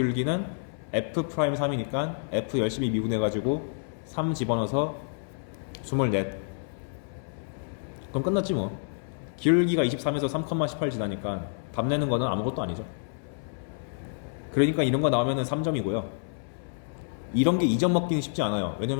f'3이니까 f 열심히 미분해가지고 3 집어넣어서 24. 그럼 끝났지 뭐. 기울기가 23에서 3,18 지나니까 답 내는 거는 아무것도 아니죠. 그러니까 이런 거 나오면은 3점이고요. 이런 게 2점 먹기는 쉽지 않아요.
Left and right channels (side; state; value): right; silent; 59 dB below the other